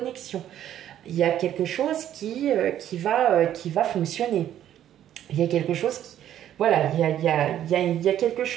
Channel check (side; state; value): left; quieter; 11.2 dB